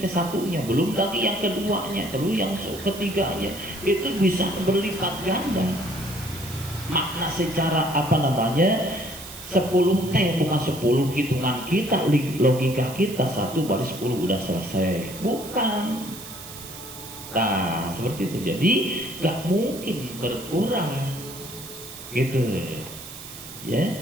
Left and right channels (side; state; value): right; noise; hiss, 13 dB below the sound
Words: satunya, belum lagi yang keduanya, terus yang ketiganya, itu bisa berlipat ganda. Makna secara apa namanya 10 bukan 10 hitungan kita, logika kita 1 baru 10 udah selesai, bukan. Nah seperti itu. Jadi gak mungkin berkurang gitu ya,